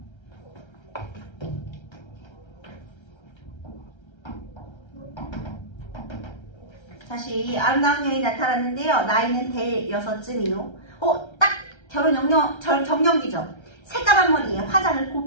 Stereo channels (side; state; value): right; late; 1.3 ms